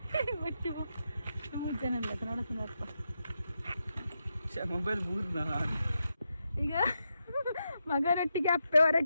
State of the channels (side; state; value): both; inverted; correlation -0.86